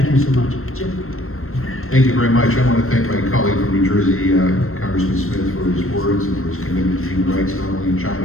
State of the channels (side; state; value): right; late; 0.62 ms